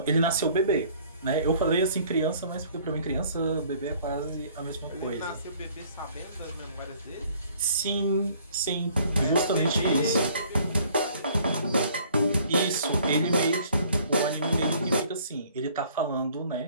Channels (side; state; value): both; inverted; correlation -0.57